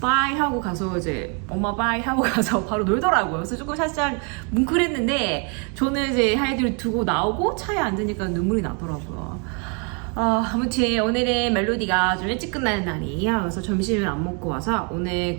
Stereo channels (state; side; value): quieter; left; 36.7 dB